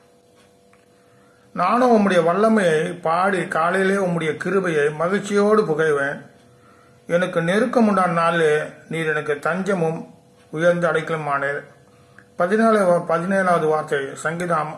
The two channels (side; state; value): both; identical; correlation 1.00